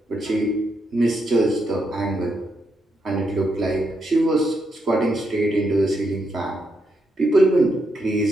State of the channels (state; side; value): normal; both; correlation 0.81